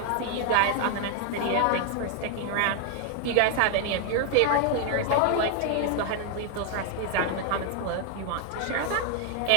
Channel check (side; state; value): both; different; correlation 0.00